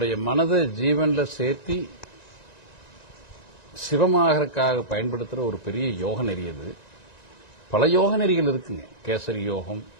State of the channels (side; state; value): right; late; 1.9 ms